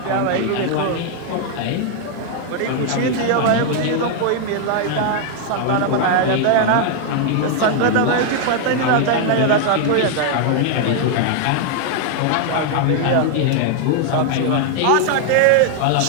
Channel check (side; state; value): both; different; correlation 0.00